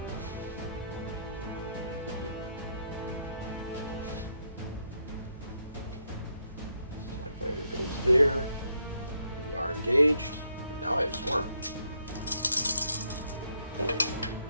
Yeah. TIE fighter goes there. We are engaged. And now I have swarm.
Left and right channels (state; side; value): inverted; both; correlation -0.75